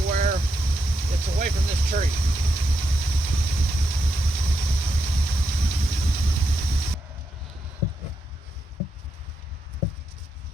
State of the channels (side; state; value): both; normal; correlation 0.83